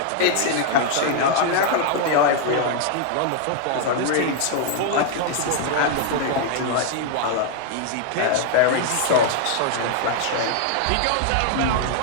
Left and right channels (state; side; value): different; both; correlation 0.00